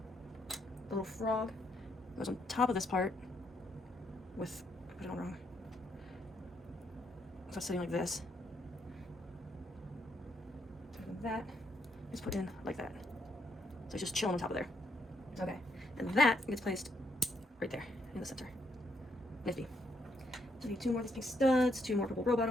The little frog goes on top of this part with, I put it on wrong. So it's sitting like this. And that is put in like that. So it's just chilling on top of there. Okay. And that gets placed right there in the center. Nifty. So I need 2 more of these pink studs, 2 more purple robot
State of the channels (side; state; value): both; normal; correlation 0.75